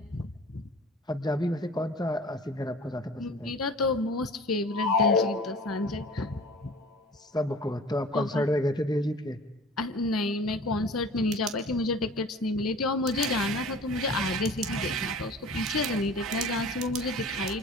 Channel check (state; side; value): normal; both; correlation 0.43